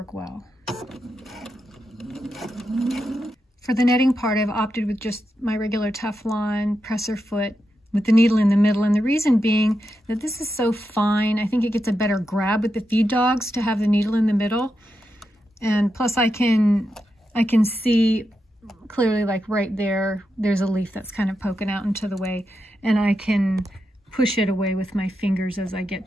well. For the netting part, I've opted with just my regular Teflon presser foot with the needle in the middle, and the reason being that this is so fine, I think it gets a better grab with the feed dogs to have the needle in the middle. And plus I can see clearly, like right there, there's a leaf that's kind of poking out into the way, and I can push it away with my fingers as I get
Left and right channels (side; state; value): both; normal; correlation 0.87